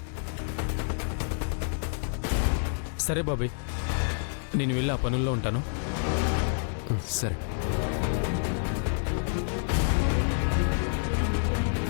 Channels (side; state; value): right; silent; digital silence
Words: సరే బాబీ, నేను వెళ్ళి ఆ పనుల్లో ఉంటాను. సరే.